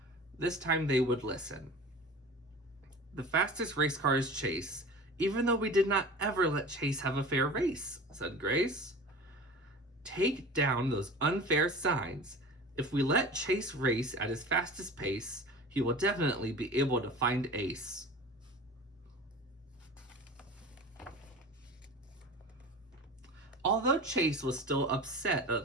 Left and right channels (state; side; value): normal; both; correlation 0.37